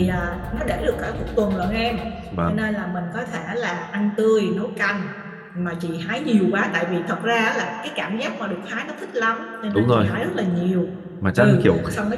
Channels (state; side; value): identical; both; correlation 1.00